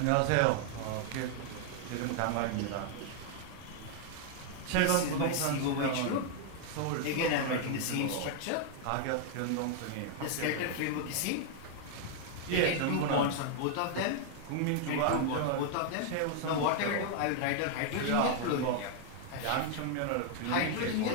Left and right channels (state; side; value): different; both; correlation 0.00